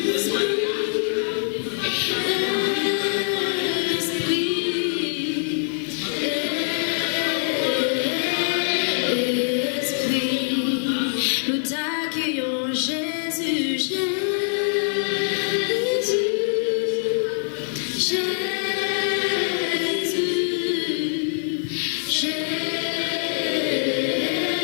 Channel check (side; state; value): right; silent; 62 dB below the other